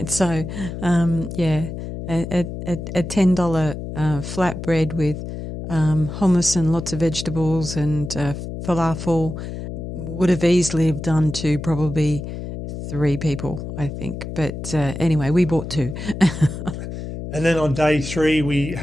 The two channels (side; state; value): left; noise; hum, 8 dB below the sound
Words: So, a $10 flatbread with hummus and lots of vegetables and falafel would have easily have done to probably 3 people, I think. But anyway, we bought 2. And then on day 3, we